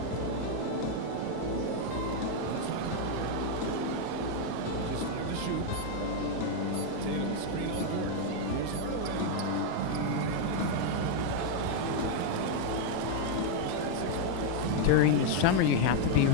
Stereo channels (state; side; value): different; both; correlation 0.00